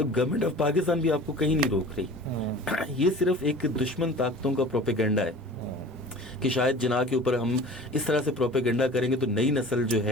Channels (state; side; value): normal; both; correlation 0.41